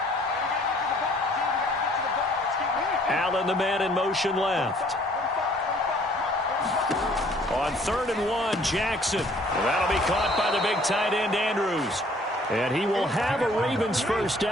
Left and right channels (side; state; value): both; normal; correlation 0.58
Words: Allen, the man in motion left. On 3rd and 1, Jackson. That'll be caught by the big tight end, Andrews. And he will have a Ravens first